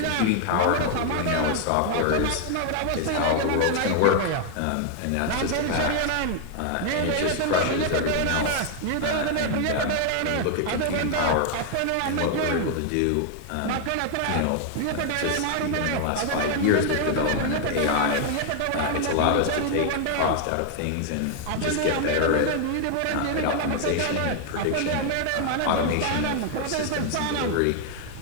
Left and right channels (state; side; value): different; both; correlation 0.00